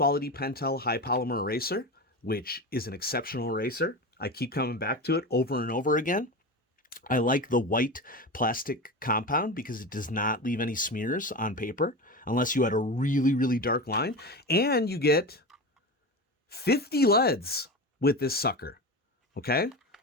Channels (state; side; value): normal; both; correlation 0.24